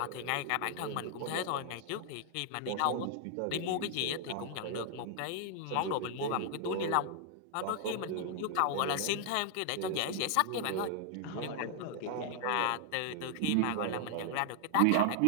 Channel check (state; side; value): different; both; correlation 0.00